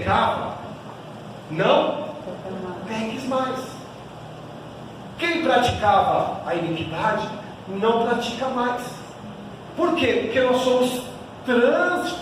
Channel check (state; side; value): identical; both; correlation 1.00